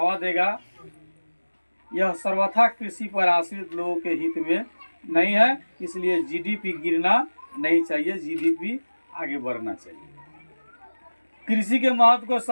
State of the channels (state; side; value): inverted; both; correlation -1.00